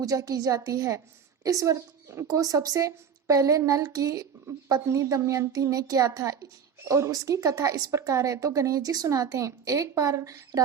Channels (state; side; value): quieter; left; 7.3 dB